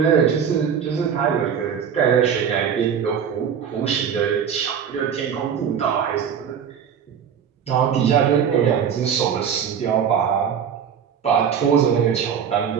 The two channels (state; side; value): quieter; left; 7.8 dB